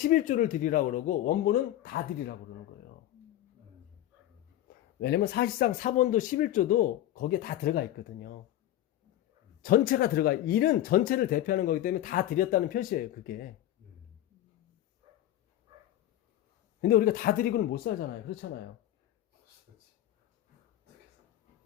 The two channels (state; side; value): quieter; right; 13.2 dB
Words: 드리라고 그러고 원본은 다 드리라고 그러는 거예요. 왜냐면 사실상 사본도 11조도 거기에 다 들어가 있거든요. 전체가 들어가. 일은 전체를 대표하는 거기 때문에 다 드렸다는 표시예요. 그게. 근데 우리가 다 드리고는 못 살잖아요. 그렇잖아요.